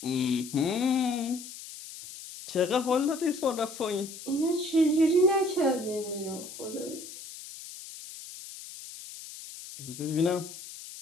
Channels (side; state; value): left; noise; hiss, 13 dB below the sound